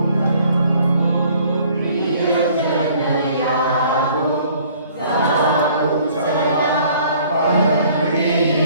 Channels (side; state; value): both; inverted; correlation -0.57